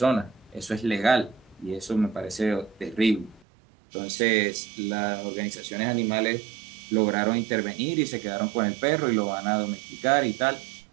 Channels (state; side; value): drops out; left; at 3.5 s